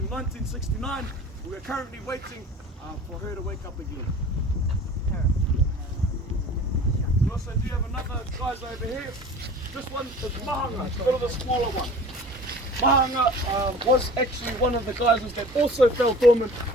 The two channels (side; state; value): both; normal; correlation 0.42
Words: 1969. We are currently waiting for her to wake up again. We also do have another geyser over here. This one is Mahanga, it's a bit of the smaller one. Mahanga was actually one of the geysers that also fell dormant